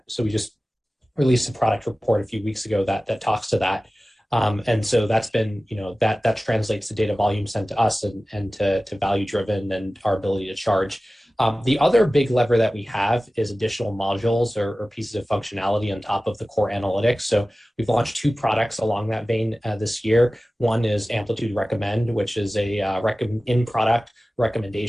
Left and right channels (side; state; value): both; normal; correlation 0.96